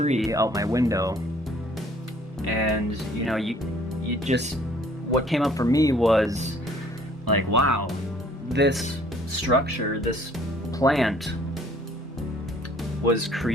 out my window, and you just, what came up for me was like, wow, this structure, this plant was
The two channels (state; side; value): normal; both; correlation 0.58